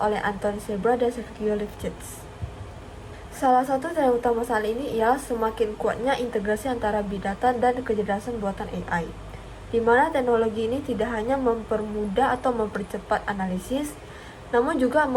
Anthony Sebra dan Sergio Lifshitz. Salah satu tren utama saat ini ialah semakin kuatnya integrasi antara Big Data dan kecerdasan buatan AI, di mana teknologi ini tidak hanya mempermudah atau mempercepat analisis, namun juga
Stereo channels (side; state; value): both; identical; correlation 1.00